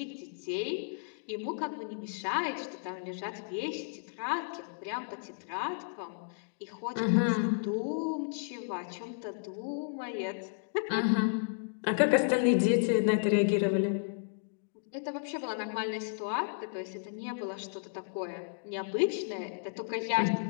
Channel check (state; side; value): silent; right; digital silence